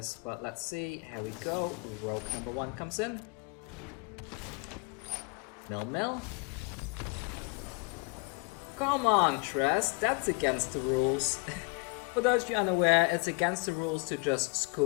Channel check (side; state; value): right; quieter; 30.9 dB